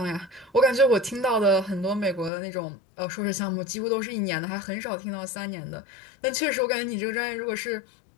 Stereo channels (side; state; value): right; drops out; at 2.3 s